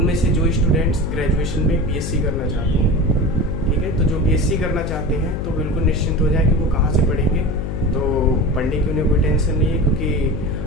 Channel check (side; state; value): left; noise; hum, 4 dB below the sound